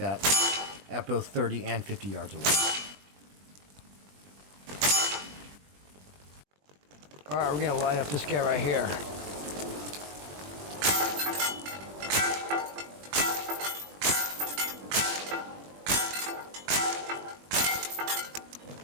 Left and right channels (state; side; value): late; left; 20 ms